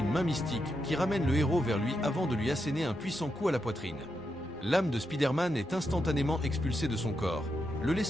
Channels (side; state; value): both; normal; correlation 0.84